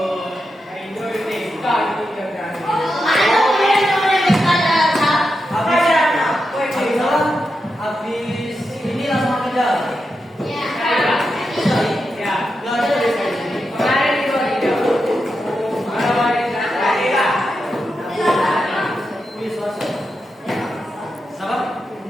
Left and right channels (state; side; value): normal; both; correlation 0.87